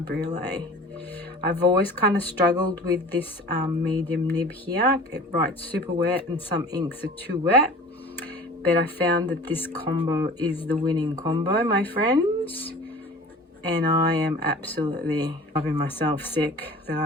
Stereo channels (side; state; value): both; normal; correlation 0.42